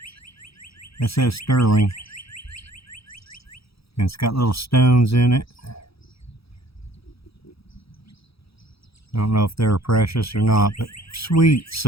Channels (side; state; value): right; late; 0.77 ms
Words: That says sterling. And it's got little stones in it. I don't know if they're precious or not, but sweet,